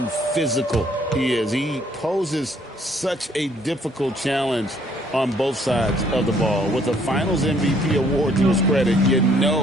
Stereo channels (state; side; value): normal; both; correlation 0.64